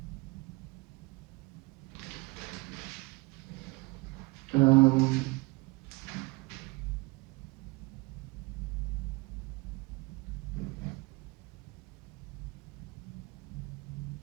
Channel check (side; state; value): left; quieter; 24.5 dB